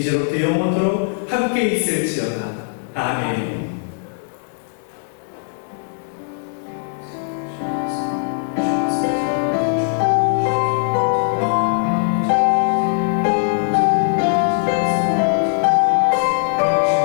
영원토록 함께 있을지어다. 아멘.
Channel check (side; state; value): right; silent; digital silence